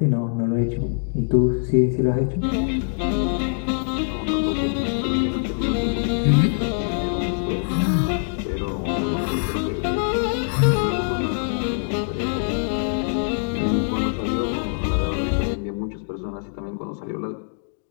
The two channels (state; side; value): silent; right; digital silence